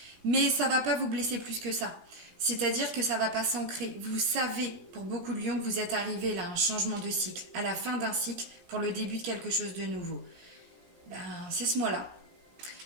Mais ça ne va pas vous blesser plus que ça. C'est-à-dire que ça ne va pas s'ancrer. Vous savez, pour beaucoup de lions, que vous êtes arrivé là à un changement de cycle, à la fin d'un cycle, pour le début de quelque chose de nouveau. Ben, c'est ce mois-là.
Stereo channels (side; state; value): left; late; 17 ms